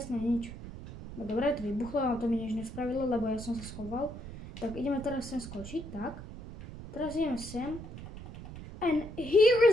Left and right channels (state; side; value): noise; right; rumble, 12 dB below the sound